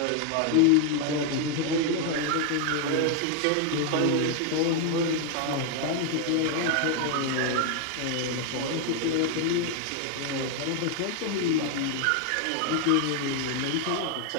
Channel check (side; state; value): both; different; correlation 0.00